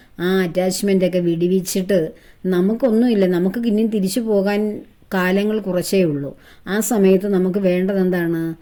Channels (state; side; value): identical; both; correlation 1.00